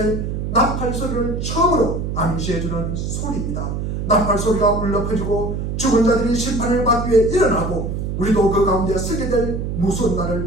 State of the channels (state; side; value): noise; right; hum, 3 dB below the sound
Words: 나팔 소리를 처음으로 암시해주는 소리입니다. 나팔 소리가 울려 퍼지고 죽은 자들이 심판을 받기 위해 일어나고 우리도 그 가운데 서게 될 무서운